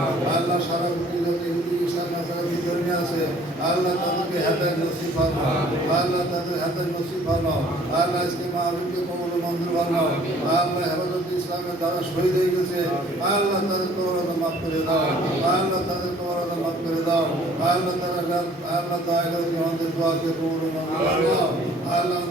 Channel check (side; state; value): both; normal; correlation 0.55